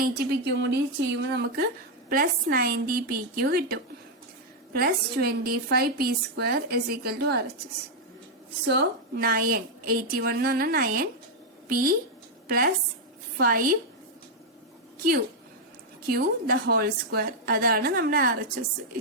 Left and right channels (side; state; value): both; normal; correlation -0.01